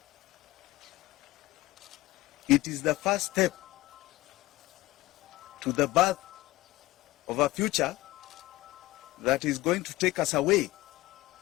It is the first step to the birth of a future that is going to take us away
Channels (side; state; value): right; quieter; 18.5 dB